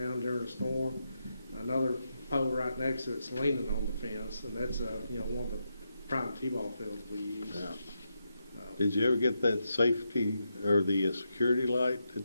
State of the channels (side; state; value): both; inverted; correlation -0.84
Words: during a storm. Another pole right next to it's leaning on the fence, and that's one of the prime t-ball fields we use. Yeah. Did you ever get that safety or the security light